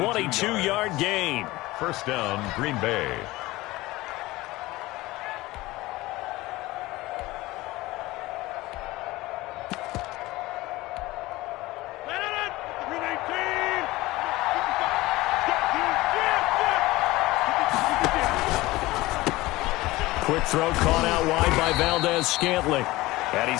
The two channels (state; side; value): quieter; right; 19.3 dB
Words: gain. First down, Green Bay. Quick throw caught out wide by Valdez-Scantling. And